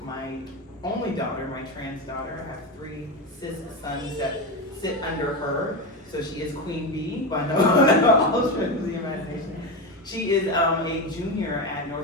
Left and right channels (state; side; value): normal; both; correlation 0.16